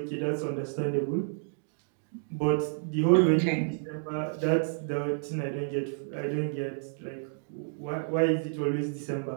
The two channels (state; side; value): silent; left; digital silence